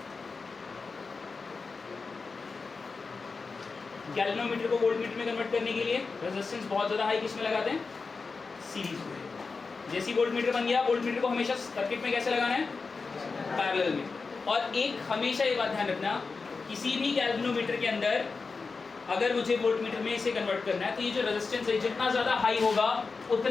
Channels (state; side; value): quieter; right; 4.5 dB